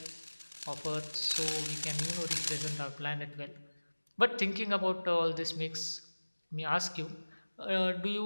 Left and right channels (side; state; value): both; inverted; correlation -1.00